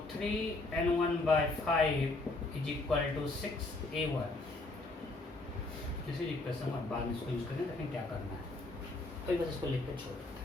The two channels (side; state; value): right; quieter; 3.1 dB